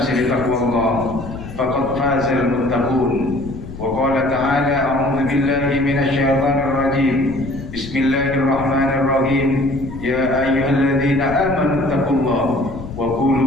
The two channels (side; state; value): left; noise; rumble, 12 dB below the sound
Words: بتقوى الله، فقد فاز المتقون. وقال تعالى: أعوذ بالله من الشيطان الرجيم، بسم الله الرحمن الرحيم، يا أيها الذين آمنوا اتقوا الله